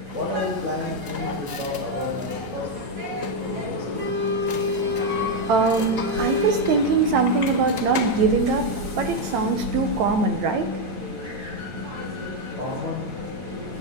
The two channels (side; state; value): left; late; 9.0 ms